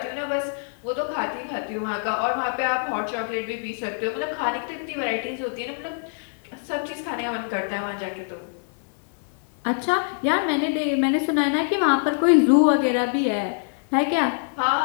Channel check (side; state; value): right; silent; 62 dB below the other